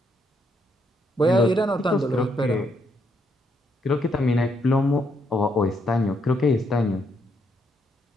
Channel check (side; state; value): both; normal; correlation 0.75